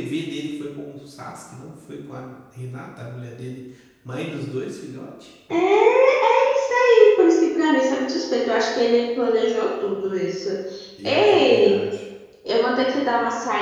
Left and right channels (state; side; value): identical; both; correlation 1.00